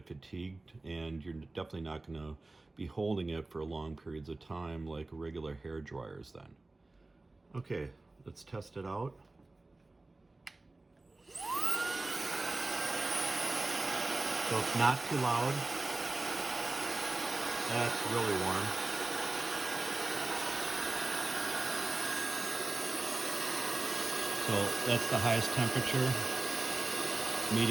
fatigued, and you're definitely not going to be holding it for long periods of time like regular hair dryers then. Okay, let's test it out. So it's not too loud. That's really warm. So that's the highest temperature,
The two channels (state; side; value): quieter; left; 3.1 dB